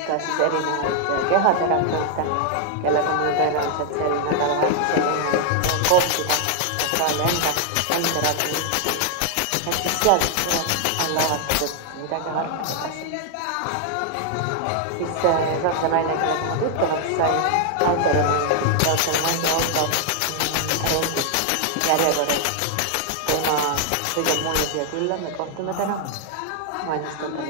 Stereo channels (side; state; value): both; different; correlation 0.00